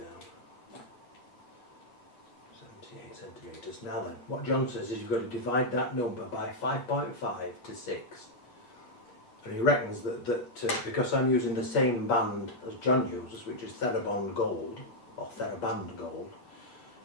78 centimetres. Now then, what John says is you've got to divide that number by 5.5 to 6. And he reckons that because I'm using the same band as John uses, which is Thera Band Gold, or Thera Band Gold,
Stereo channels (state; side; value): late; right; 8.4 ms